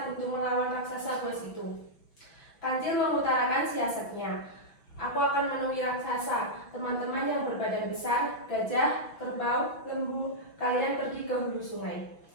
untuk melawan raksasa buas itu." Kancil mengutarakan siasatnya. "Aku akan menemui raksasa. Teman-teman yang berbadan besar, gajah, kerbau, lembu, kalian pergi ke hulu sungai.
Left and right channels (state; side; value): late; right; 5.8 ms